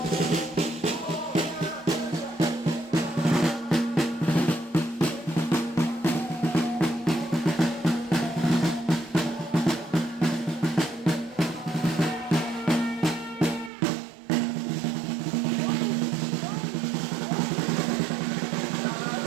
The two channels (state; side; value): drops out; left; at 13.7 s